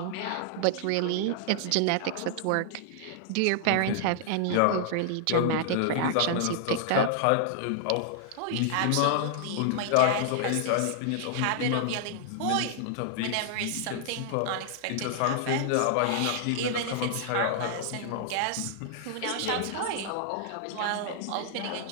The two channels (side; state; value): both; different; correlation -0.01